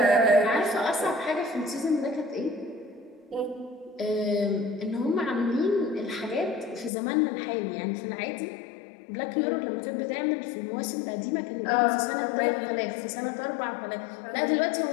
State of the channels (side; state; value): right; drops out; at 6.9 s